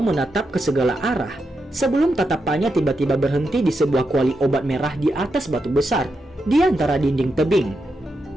menatap ke segala arah sebelum tatapannya tiba-tiba berhenti di sebuah kuali obat merah di atas batu besar di antara dinding tebing.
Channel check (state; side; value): normal; both; correlation 0.85